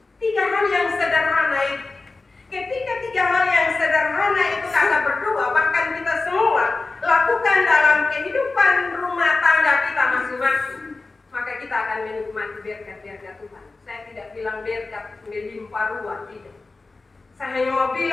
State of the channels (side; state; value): right; quieter; 3.6 dB